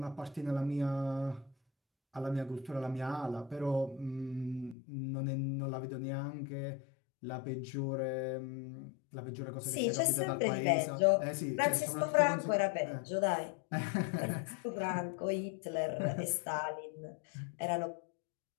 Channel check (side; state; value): right; drops out; at 4.8 s